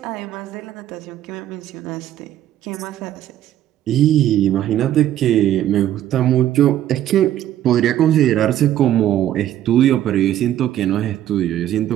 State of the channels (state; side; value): quieter; left; 12.1 dB